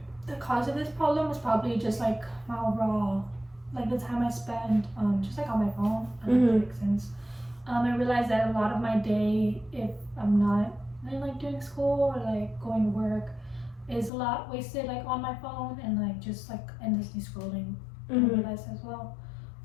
the cause of this problem is probably just like my overall, like the time I spend just like on my phone. I don't know if that makes sense. I realized that a lot of my day, if I'm not like doing school or like going to work, is a lot wasted like on my phone and like just like endlessly scrolling. I realized as well.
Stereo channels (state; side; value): drops out; right; at 14.1 s